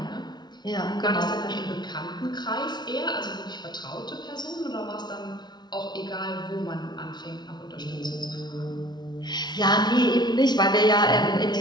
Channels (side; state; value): right; late; 0.20 ms